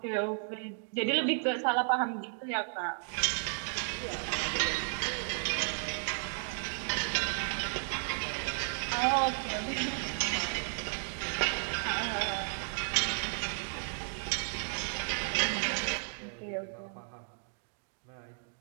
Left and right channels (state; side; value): silent; left; 55 dB below the other